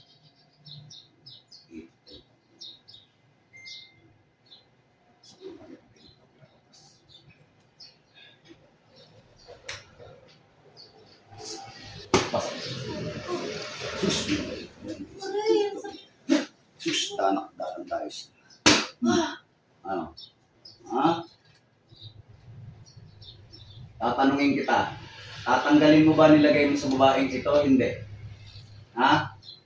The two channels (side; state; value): both; identical; correlation 1.00